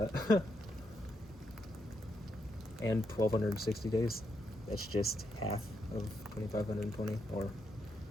and 1,260 days, that's just half of 2,520, or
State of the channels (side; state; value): both; normal; correlation 0.80